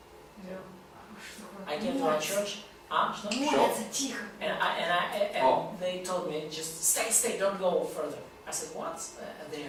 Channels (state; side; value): identical; both; correlation 1.00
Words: Я говорю: I что came to our church. Что? Молятся тихо. And they told me, just stay, don't go further. I said, what? They